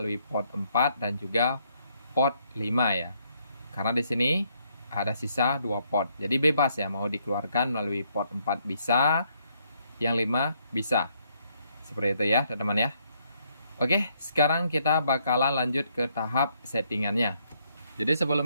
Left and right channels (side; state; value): both; inverted; correlation -0.72